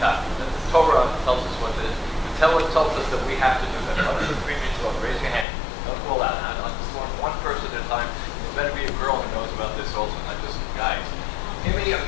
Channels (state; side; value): drops out; right; at 5.5 s